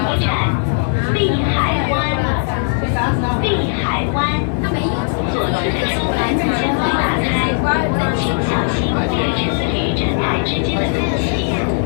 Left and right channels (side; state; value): right; silent; 63 dB below the other